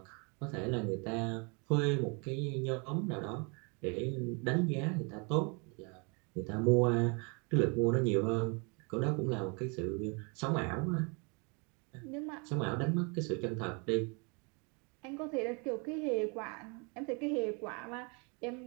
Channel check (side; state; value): left; quieter; 33.0 dB